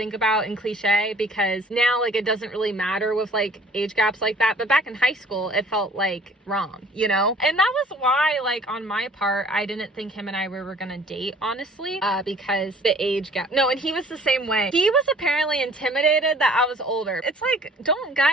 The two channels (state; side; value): normal; both; correlation 0.53